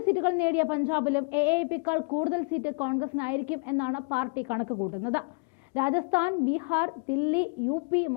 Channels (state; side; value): quieter; right; 34.3 dB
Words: സീറ്റുകൾ നേടിയ പഞ്ചാബിലും AAPയേക്കാൾ കൂടുതൽ സീറ്റ് കോൺഗ്രസിനായിരിക്കും എന്നാണ് പാർട്ടി കണക്ക് കൂട്ടുന്നത്. രാജസ്ഥാൻ, ബീഹാർ, ദില്ലി, UP,